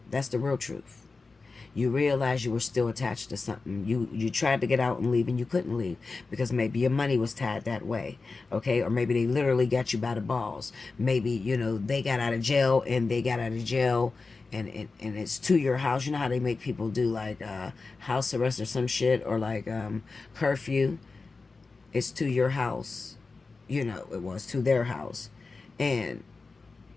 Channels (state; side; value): quieter; right; 4.0 dB